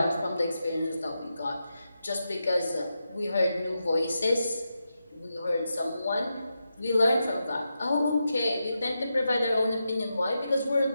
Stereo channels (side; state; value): both; inverted; correlation -0.87